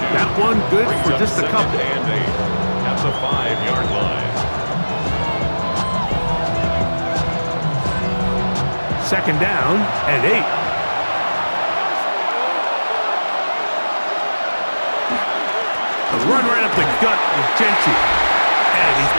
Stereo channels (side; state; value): both; inverted; correlation -1.00